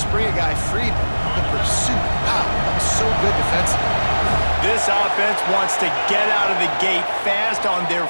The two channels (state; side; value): inverted; both; correlation -1.00